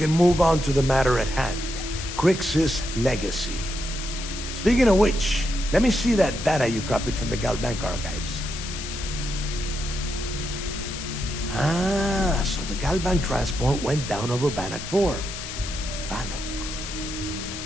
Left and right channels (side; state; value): left; noise; hiss, 8 dB below the sound